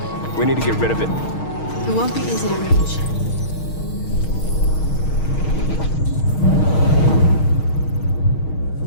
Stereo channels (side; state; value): right; late; 6.4 ms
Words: We need to get rid of it. It won't be easy to reach.